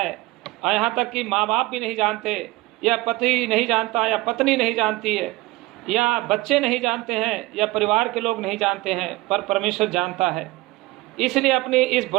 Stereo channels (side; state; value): left; quieter; 20.3 dB